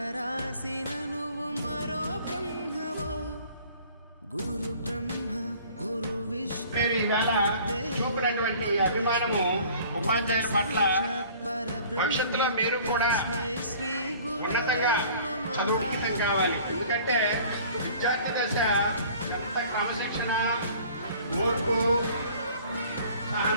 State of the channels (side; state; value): both; inverted; correlation -0.50